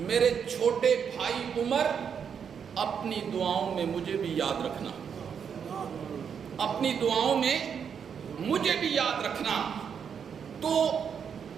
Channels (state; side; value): quieter; left; 7.3 dB